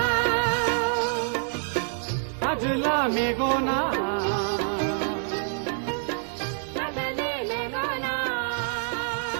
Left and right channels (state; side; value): silent; left; digital silence